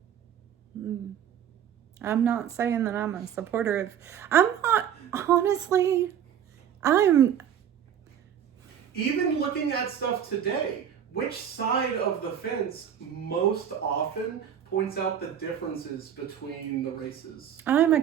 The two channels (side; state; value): left; quieter; 9.1 dB